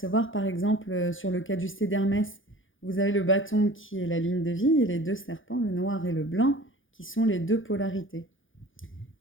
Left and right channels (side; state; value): right; late; 0.58 ms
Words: par exemple sur le caducée d'Hermès. Vous avez le bâton qui est la ligne de vie et les deux serpents, le noir et le blanc, qui sont les deux polarités.